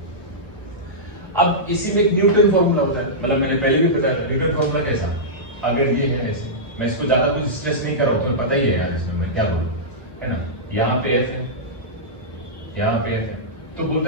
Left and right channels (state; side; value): normal; both; correlation -0.13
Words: अब इसी में एक न्यूटन फॉर्मूला होता है, मतलब मैंने पहले भी बताया था न्यूटन फॉर्मूला कैसा, अगर ये है ऐसे, मैं इसको ज्यादा कुछ स्ट्रेस नहीं कर रहा हूं, तुम्हें पता ही है यार इसमें मैं क्या बोलूं, है ना। यहाँ पे एफ है, यहाँ पे एफ है, तो